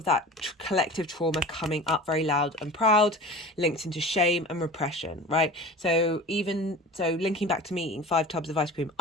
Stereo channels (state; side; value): normal; both; correlation 0.36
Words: that collective trauma coming up very loud and proud, linked into shame and repression, right? So linking back to me eating 5 tubs of ice cream,